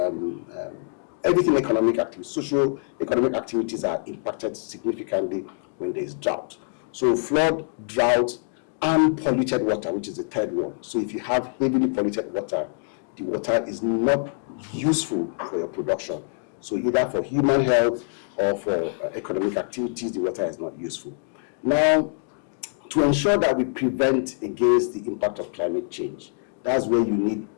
everything economic activities, social economic activities are impacted significantly when there is drought. So flood, drought, and polluted water, which is the third one. So if you have heavily polluted water, the water is not useful for your production. So either for human health or for economic activities, the water is not useful. Now, to ensure that we prevent against the impact of climate change, that's where you need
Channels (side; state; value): right; silent; digital silence